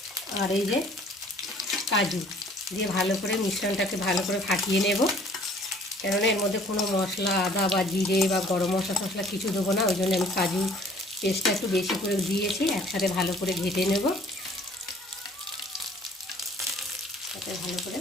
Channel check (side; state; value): both; normal; correlation 0.55